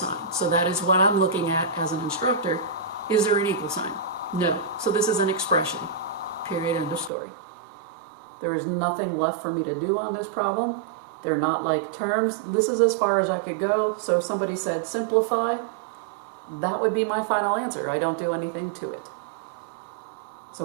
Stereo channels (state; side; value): drops out; left; at 7.1 s